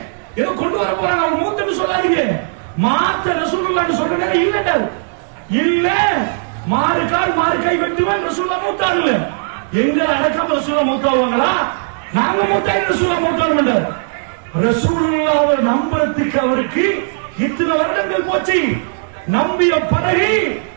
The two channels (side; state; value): left; silent; 68 dB below the other